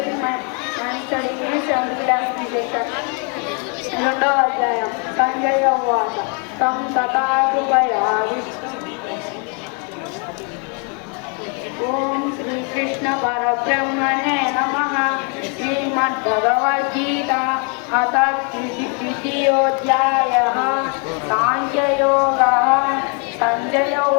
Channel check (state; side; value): quieter; right; 37.7 dB